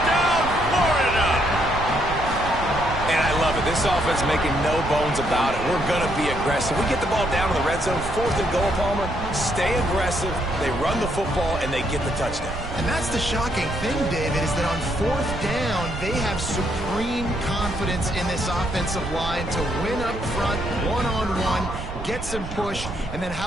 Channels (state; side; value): noise; right; rumble, 8 dB below the sound